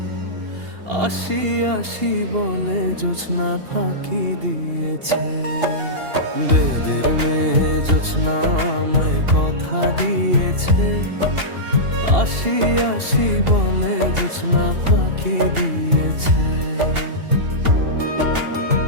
আসি আসি বলে জোছনা ফাঁকি দিয়েছে। বেদের মেয়ে জোছনা আমায় কথা দিয়েছে, আসি আসি বলে জোছনা ফাঁকি দিয়েছে।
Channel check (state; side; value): late; left; 2.8 ms